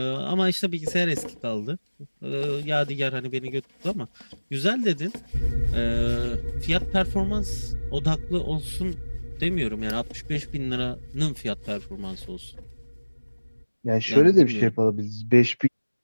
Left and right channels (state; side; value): inverted; both; correlation -1.00